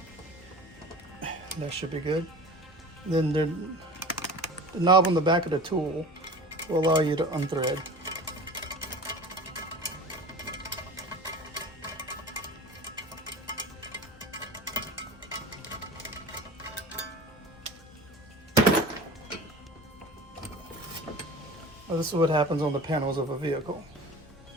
That should be good. Then the knob on the back of the tool will allow you to unthread. Now this is what happens on the panels of a vehicle.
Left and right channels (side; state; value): both; normal; correlation 0.38